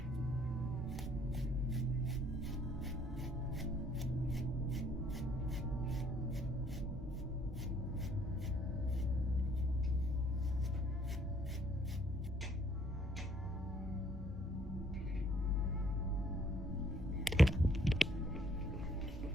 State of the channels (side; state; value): both; normal; correlation 0.64